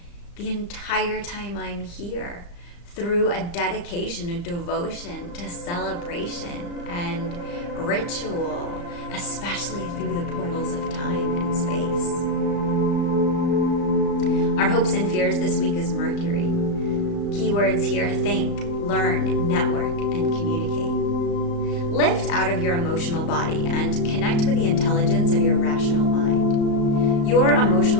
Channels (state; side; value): late; right; 35 ms